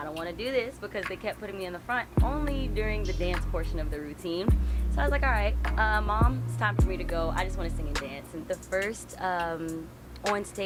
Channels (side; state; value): both; identical; correlation 1.00